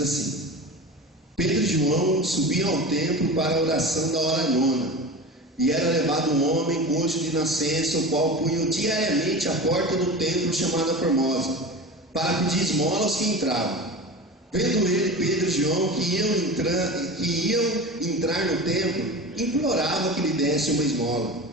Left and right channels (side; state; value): both; normal; correlation 0.30